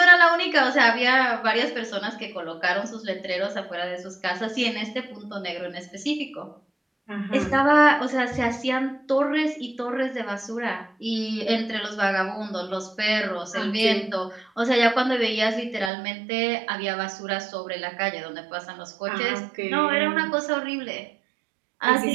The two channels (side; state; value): left; drops out; at 15.9 s